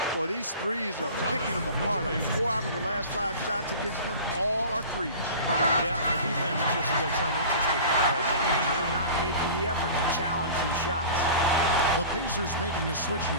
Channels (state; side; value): inverted; both; correlation -0.38